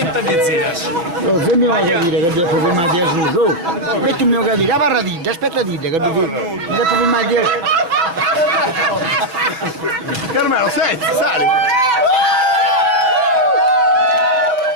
se mi vuoi capire che devo filmare di su, metti il mio capire, parla dite, aspetta dite che devo filmare di Carmelo, senti, sali!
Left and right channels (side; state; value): left; late; 6.1 ms